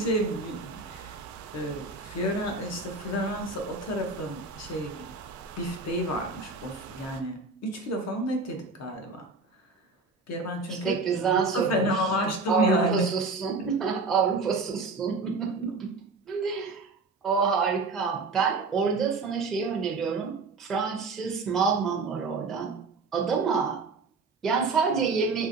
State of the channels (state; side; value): quieter; left; 3.8 dB